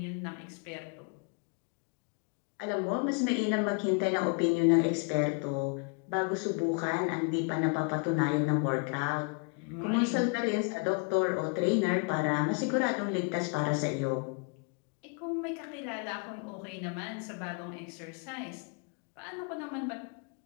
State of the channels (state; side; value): quieter; right; 35.4 dB